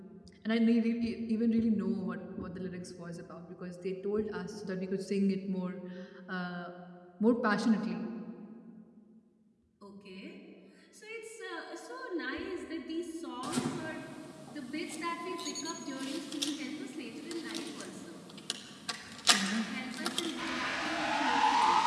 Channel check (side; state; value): both; identical; correlation 1.00